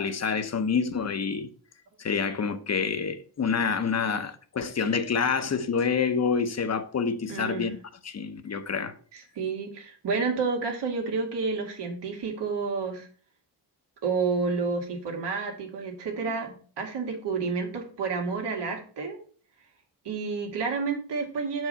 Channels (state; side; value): normal; both; correlation -0.01